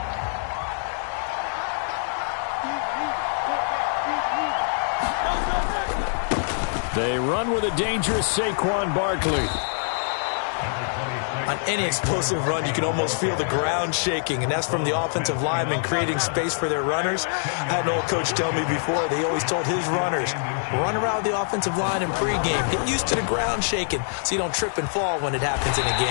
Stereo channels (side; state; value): right; silent; digital silence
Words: They run with a dangerous Saquon Barkley. On any explosive run, you can almost feel the ground shaking, and that's from the offensive linemen creating space for their runners. I had an old coach tell me before, they always told his runners, run around the offensive line in pregame. Get used to the ground shaking so you don't trip and fall when it happens in a